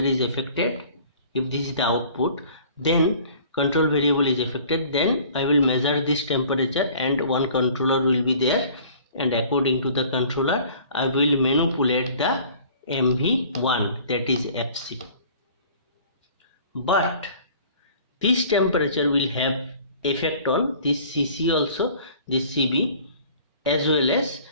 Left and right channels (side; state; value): both; inverted; correlation -0.50